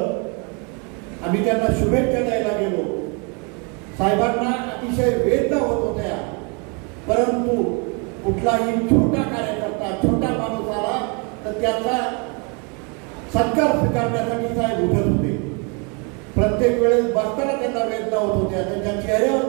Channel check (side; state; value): left; quieter; 33.8 dB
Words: आम्ही त्यांना शुभेच्छा द्यायला गेलो. साहेबांना अतिशय वेदना होत होत्या, परंतु कुठलाही छोटा कार्यकर्ता, छोटा माणूस आला तर त्याचा सत्कार स्वीकारण्यासाठी साहेब उठत होते. प्रत्येक वेळेस बसताना त्यांना वेदना होत होत्या, त्यांच्या चेहऱ्यावर